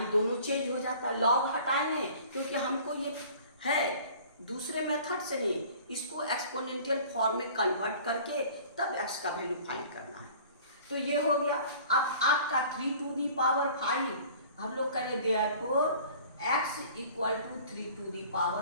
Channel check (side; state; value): both; inverted; correlation -0.47